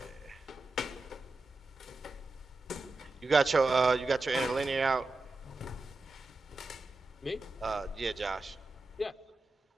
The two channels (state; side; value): quieter; left; 3.1 dB